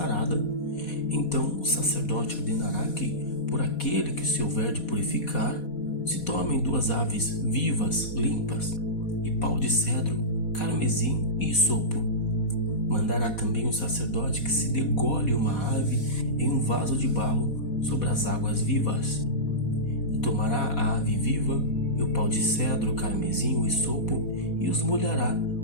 então o sacerdote ordenará que, por aquele que se houver de purificar, se tomem 2 aves vivas, limpas, e pau de cedro, carmesim e isopo. Mandará também o sacerdote que se degole uma ave em um vaso de barro sobre as águas vivas. E tomará a ave viva e o pau de cedro, carmesim, o isopo, e os molhará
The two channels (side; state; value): right; late; 4.2 ms